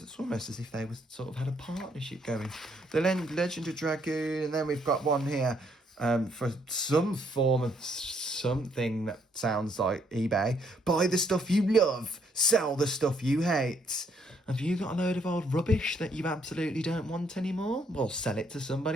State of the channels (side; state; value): both; normal; correlation 0.70